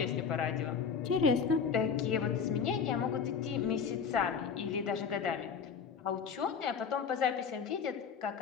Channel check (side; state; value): right; quieter; 6.4 dB